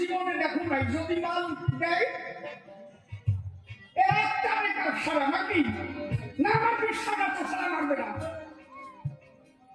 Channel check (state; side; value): identical; both; correlation 1.00